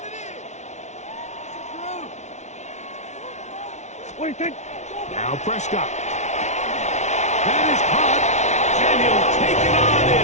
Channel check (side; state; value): right; late; 0.33 ms